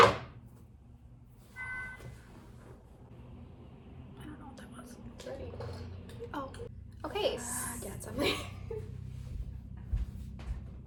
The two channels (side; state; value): both; identical; correlation 1.00